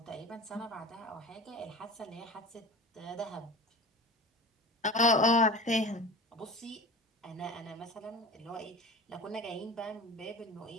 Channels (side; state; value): both; normal; correlation 0.34